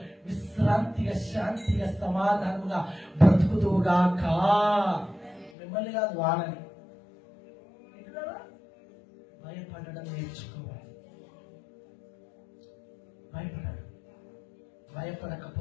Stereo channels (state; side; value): drops out; right; at 5.5 s